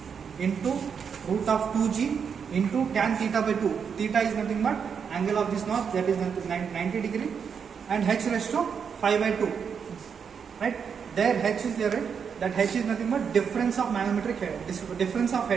into root of 2g into tan theta by 2. Theta is nothing but angle of this notch, that is 90 degree, and h raised to 5 by 2. Right? There h is there, right? That h is nothing but difference of manometric head, difference of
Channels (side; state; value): left; quieter; 6.7 dB